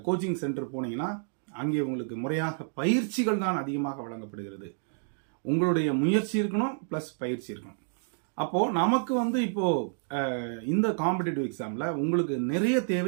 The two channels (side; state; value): left; silent; digital silence